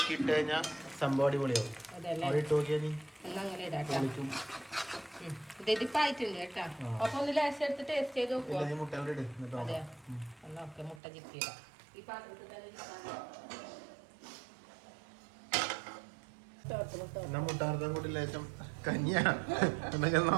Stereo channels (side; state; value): left; drops out; at 11.0 s